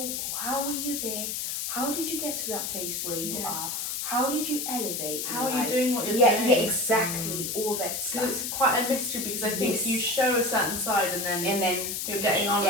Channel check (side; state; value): left; noise; hiss, 3 dB below the sound